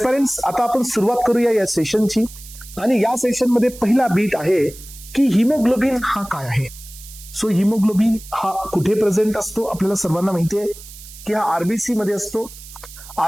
आता आपण सुरुवात करूया या सेशनची. आणि या सेशन मध्ये पहिला बीट आहे की हिमोग्लोबिन हा काय आहे. सो हिमोग्लोबिन हा कुठे प्रेझेंट असतो आपल्याला सर्वांना माहिती आहे की हा आरबीसी मध्ये असतो.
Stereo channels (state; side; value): noise; right; hiss, 17 dB below the sound